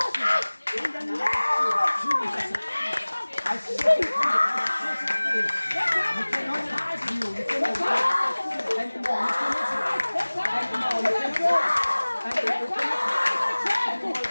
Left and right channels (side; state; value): both; inverted; correlation -1.00